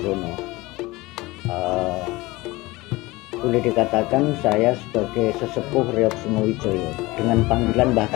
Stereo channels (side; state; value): right; quieter; 21.1 dB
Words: Boleh dikatakan saya sebagai sesepuh Reok Singowijoyo dengan panggilan Mbah